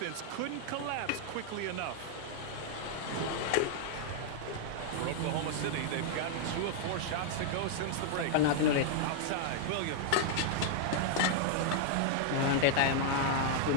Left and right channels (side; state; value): both; different; correlation 0.00